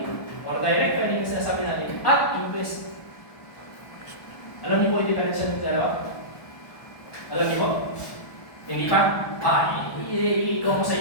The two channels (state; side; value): late; right; 1.2 ms